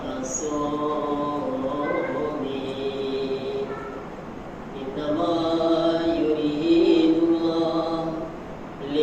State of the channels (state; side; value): identical; both; correlation 1.00